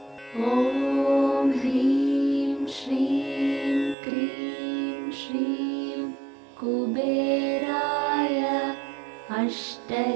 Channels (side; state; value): left; drops out; at 4.0 s